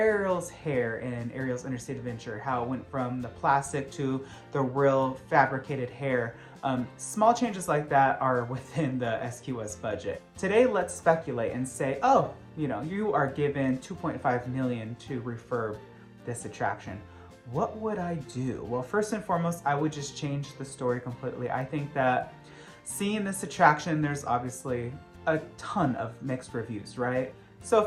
hair in Ariel's Interstate Adventure, how it went from the plastic to the real fabricated hair. Small changes like that are within the SQS budget. Today, let's speculate and say, oh, you are given $2.5 million to refurb this attraction. What would I do? Well, first and foremost, I would just change the story completely. I think that seeing this attraction, there's obviously a ton of mixed reviews, right? So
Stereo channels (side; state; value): both; identical; correlation 1.00